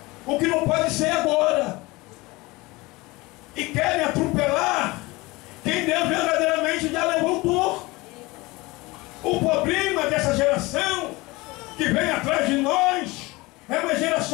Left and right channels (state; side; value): quieter; right; 22.5 dB